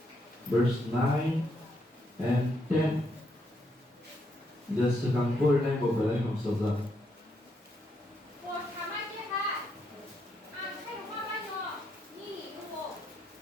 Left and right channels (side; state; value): both; normal; correlation 0.77